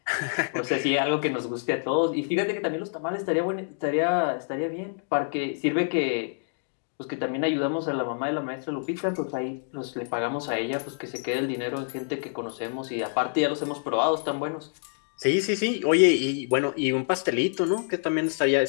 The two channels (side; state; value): right; silent; digital silence